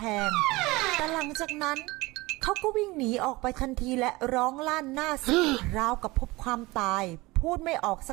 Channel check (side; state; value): left; quieter; 21.7 dB